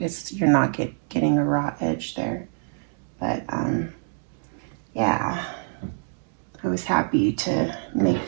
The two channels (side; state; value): left; silent; digital silence